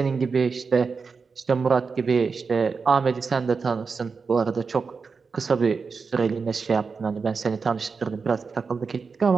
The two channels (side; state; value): left; quieter; 5.0 dB